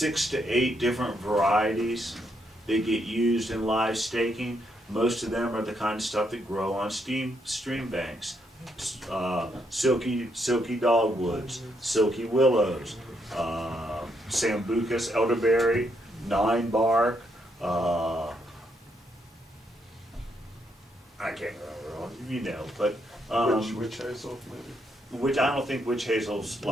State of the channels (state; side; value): normal; both; correlation 0.76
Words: to 8 different varieties that get used in live staking. Most of them are the kind of stuff that grow on stream banks. Silky dogwoods, silky willows, sambucus, elderberry, 9 bark. I can't remember all, you know, but Witch hazel, maybe? which I don't think witch hazel's